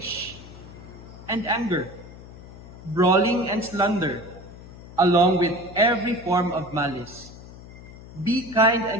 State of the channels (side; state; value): left; noise; hum, 17 dB below the sound